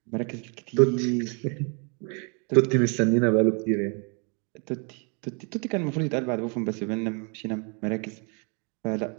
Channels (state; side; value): quieter; left; 35.6 dB